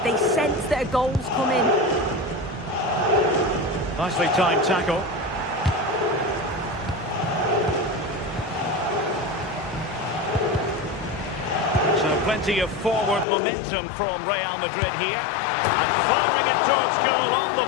They sense that a goal's coming. Nicely timed tackle. So plenty of forward momentum from Real Madrid here. And firing it towards goal on the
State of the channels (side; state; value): right; drops out; at 13.2 s